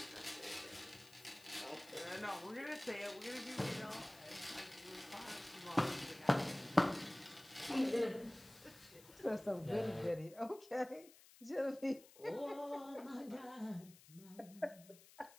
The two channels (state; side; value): noise; left; hiss, 21 dB below the sound